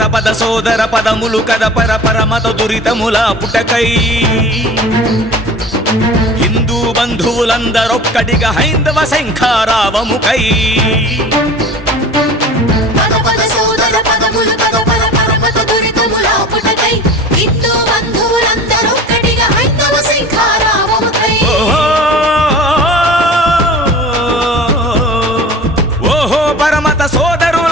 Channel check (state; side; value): normal; both; correlation 0.39